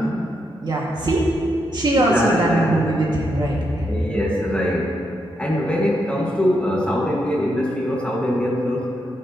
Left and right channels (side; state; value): both; normal; correlation 0.81